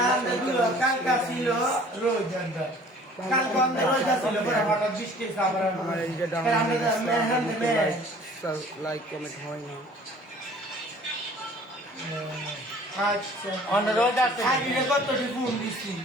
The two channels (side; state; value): both; normal; correlation 0.51